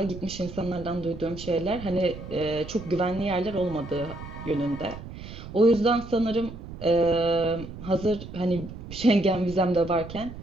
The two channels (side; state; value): right; noise; rumble, 12 dB below the sound